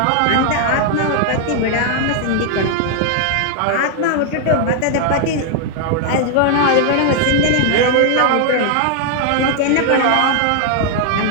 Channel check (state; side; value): different; both; correlation 0.00